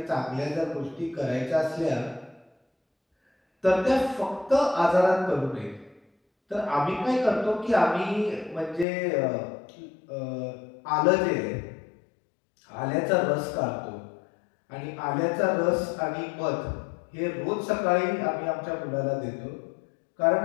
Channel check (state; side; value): drops out; right; at 8.8 s